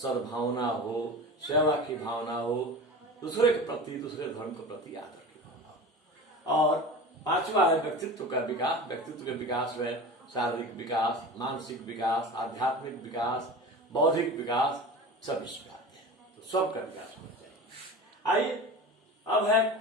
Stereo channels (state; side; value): normal; both; correlation 0.33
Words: हो, सेवा की भावना हो, दूसरे के प्रति, दूसरे धर्म के प्रति आदर की भावना हो। और पांचवा है व्यक्तित्व का विकास। व्यक्तित्व के विकास में शारीरिक विकास, मानसिक विकास, आध्यात्मिक विकास, बौद्धिक विकास सब इसमें आते हैं। तो सबका विकास होना चाहिए। आइए अब है